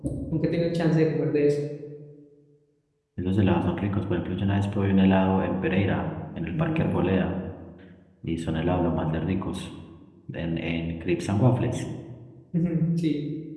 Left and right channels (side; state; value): both; identical; correlation 1.00